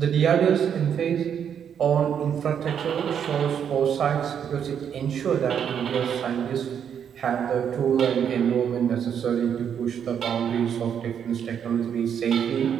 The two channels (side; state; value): left; quieter; 8.3 dB